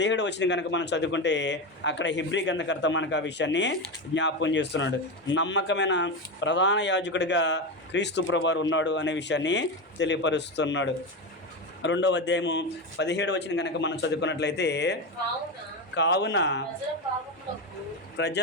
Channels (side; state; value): both; normal; correlation 0.16